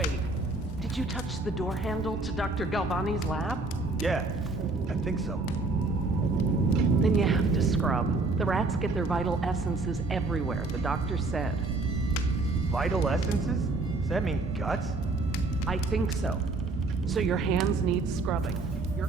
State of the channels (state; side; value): quieter; left; 3.3 dB